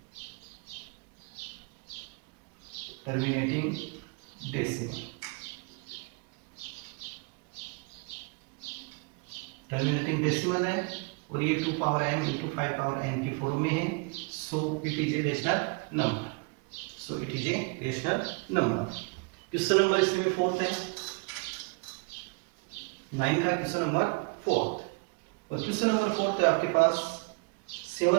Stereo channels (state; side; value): quieter; left; 31.3 dB